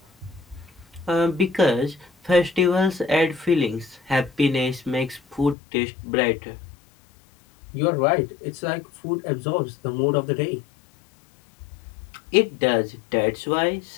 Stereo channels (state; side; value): drops out; right; at 5.6 s